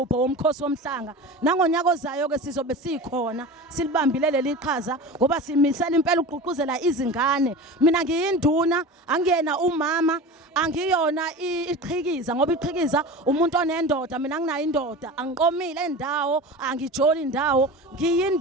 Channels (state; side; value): normal; both; correlation 0.32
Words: womkhosi womhlanga. Nangonyaka ozayo ke sizobe sikhona silibambile leli qhaza ngoba simisela impela uqhuquzela izingane. Mina ngiyinduna, angiyena umama, angiyona iqhikiza ngoba iqhikiza umuntu onendoda, mina nginayo indoda, angiqomile endawo, angijoli indawo,